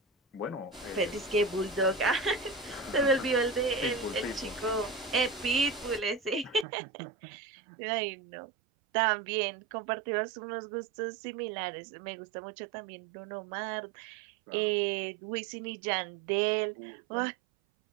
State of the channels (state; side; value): drops out; left; at 6.7 s